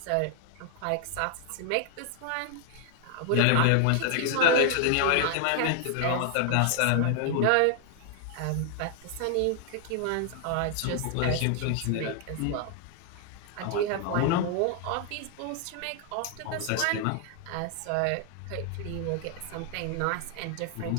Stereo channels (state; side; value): different; both; correlation 0.00